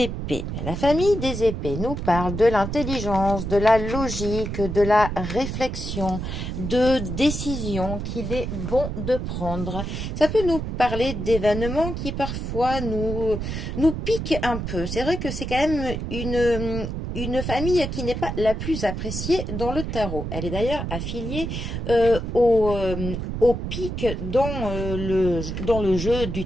La famille des épées nous parle de l'intelligence, de la logique, de la réflexion, de décision qu'il est bon de prendre. Ça peut nous parler d'événements qui parfois nous piquent un peu. C'est vrai que c'est quand même une famille qui n'est pas la plus appréciée dans le tarot. Elle est d'ailleurs affiliée au pic dans le jeu du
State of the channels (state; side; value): noise; right; rumble, 4 dB below the sound